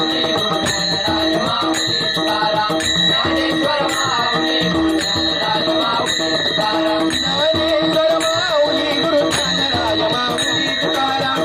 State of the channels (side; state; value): right; noise; hum, 26 dB below the sound